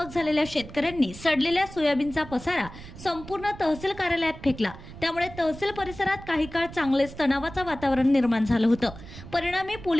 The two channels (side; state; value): right; noise; rumble, 15 dB below the sound